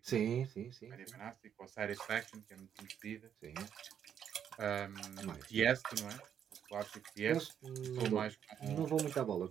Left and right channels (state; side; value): quieter; left; 8.7 dB